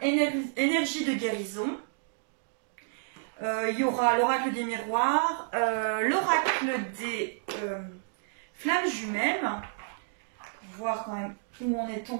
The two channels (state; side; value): silent; left; digital silence